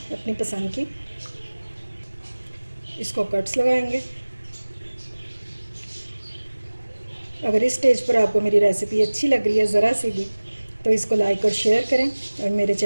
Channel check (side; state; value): both; inverted; correlation -1.00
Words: अपनी पसंद की। इसको कट्स लगाएंगे। अगर इस स्टेज पर आपको मेरी रेसिपी अच्छी लग रही है ज़रा सी भी, तो इसको लाइक और शेयर करें और मेरे